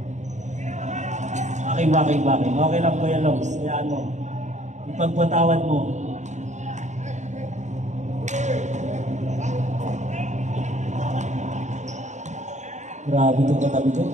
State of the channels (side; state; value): left; late; 0.34 ms